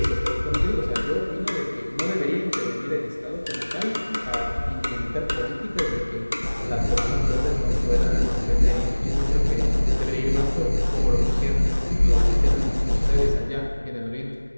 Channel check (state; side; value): inverted; both; correlation -1.00